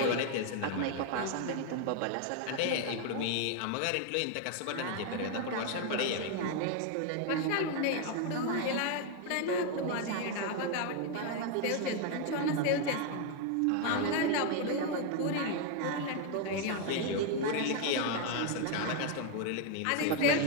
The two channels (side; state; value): both; different; correlation 0.01